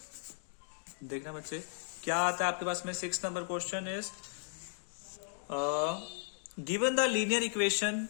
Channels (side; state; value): right; silent; digital silence